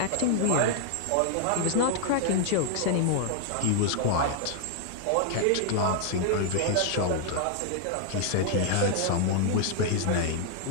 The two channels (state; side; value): different; both; correlation 0.00